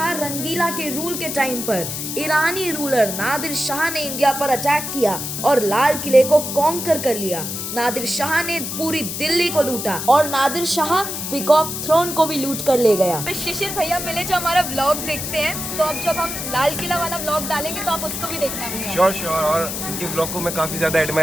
रंगीला के रूल के टाइम पर ईरानी रूलर नादिर शाह ने इंडिया पर अटैक किया और लाल किले को कॉन्कर कर लिया। नादिर शाह ने पूरी दिल्ली को लूटा और नादिर शाह पीकॉक थ्रोन को भी लूट कर ले गया। शिशिर भैया मिले जो हमारा व्लॉग देखते हैं, तो अब जब हम लाल किला वाला व्लॉग डालेंगे तो आप उसको भी देखना भैया। श्योर। और इनके व्लॉग को मैं काफ़ी ज़्यादा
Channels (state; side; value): noise; left; hiss, 5 dB below the sound